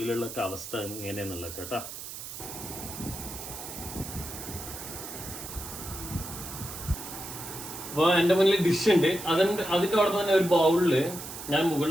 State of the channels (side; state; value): right; noise; hiss, 10 dB below the sound